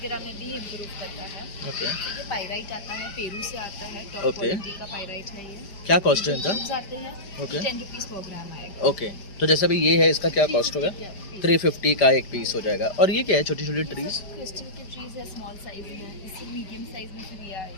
में भी इम्प्रूव करता है. ओके. तो ये पायराइट आता है, पेरू से आता है, टॉप Okay. क्वालिटी का पायराइट है ये. क्या कॉस्ट है इनका? Tubes आते हैं, Okay. 10 रुपीज़ पर ग्राम आएगा. ओके. तो जैसा भी ये है इसका क्या कॉस्ट होगा? 350 का एक पीस हो जाएगा. और ये क्या है? छोटी छोटी ट्रीज? क्रिस्टल के ट्रीज है, स्मॉल साइज में, इससे मीडियम साइज में फिर ये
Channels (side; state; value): right; late; 5.0 ms